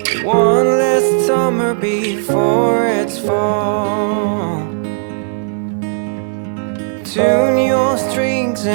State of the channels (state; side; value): silent; left; 64 dB below the other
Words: One last summer before it's fall. Tune your strings